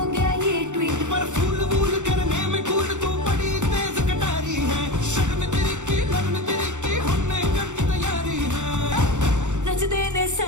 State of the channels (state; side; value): late; left; 0.85 ms